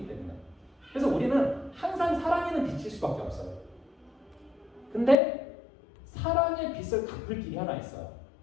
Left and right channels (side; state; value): right; drops out; at 5.2 s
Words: 때문에. 그래서 우리는 항상 사랑에는 빚질 수밖에 없어요. 근데 사랑의 빚을 갚을 길이 하나 있어요.